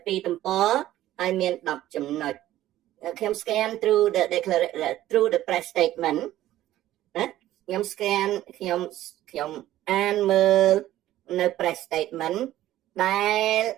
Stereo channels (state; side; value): quieter; left; 14.1 dB